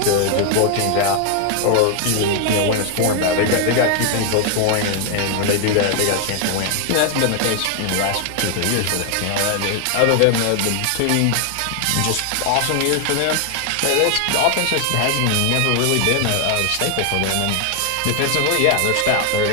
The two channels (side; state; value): both; different; correlation 0.00